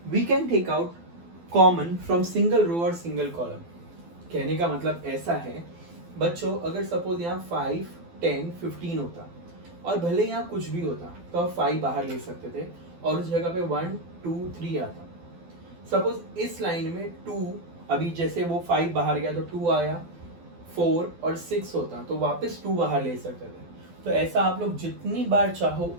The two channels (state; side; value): late; left; 12 ms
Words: We can take out common from single row और सिंगल कॉलम। कहने का मतलब ऐसा है बच्चों, अगर सपोज यहाँ 5 10 15 होता और भले यहाँ कुछ भी होता तो आप 5 बाहर ले सकते थे और उस जगह पे 1 2 3 आता। सपोज इस लाइन में 2, अभी जैसे वो 5 बाहर गया तो 2 आया, 4 और 6 होता तो वापस 2 बाहर ले सकते थे। तो ऐसा आप लोग जितनी बार चाहो